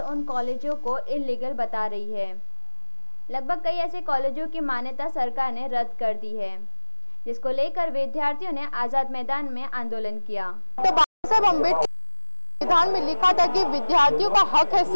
उन कॉलेजों को इल्लीगल बता रही है। लगभग कई ऐसे कॉलेजों की मान्यता सरकार ने रद्द कर दी है, जिसको लेकर विद्यार्थियों ने आजाद मैदान में आंदोलन किया। तो बाबा साहेब अम्बेडकर संविधान में लिखा था कि विद्यार्थियों का हक है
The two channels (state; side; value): inverted; both; correlation -1.00